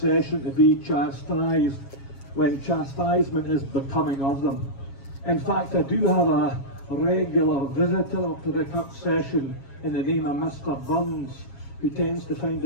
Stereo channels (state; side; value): late; right; 7.3 ms